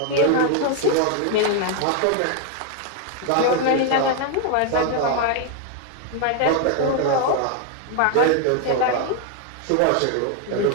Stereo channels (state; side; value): different; both; correlation 0.01